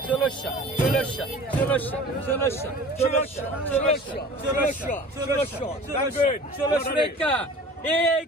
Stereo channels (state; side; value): normal; both; correlation 0.42